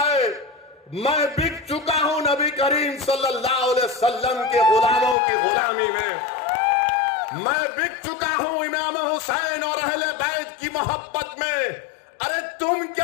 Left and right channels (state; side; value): drops out; right; at 5.2 s